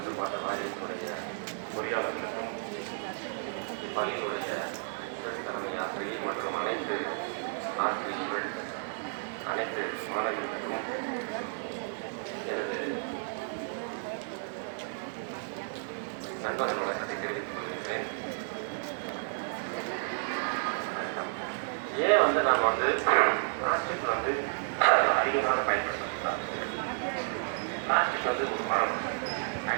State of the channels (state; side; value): silent; left; 56 dB below the other